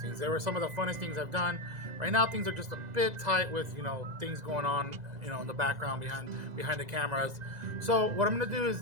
They were some of the funnest things I've done. Right now things are just a bit tight with, things going on, in the background behind the cameras. So what I'm going to do is,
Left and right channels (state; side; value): late; left; 2.0 ms